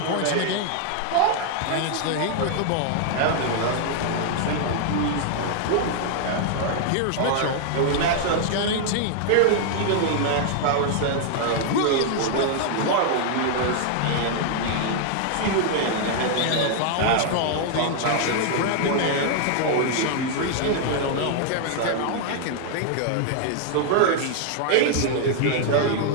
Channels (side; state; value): both; different; correlation 0.00